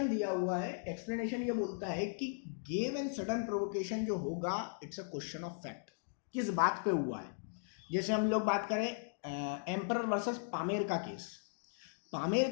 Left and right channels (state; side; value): silent; right; digital silence